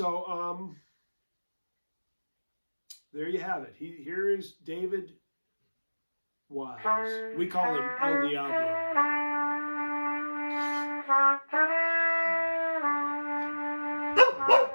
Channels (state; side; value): inverted; both; correlation -1.00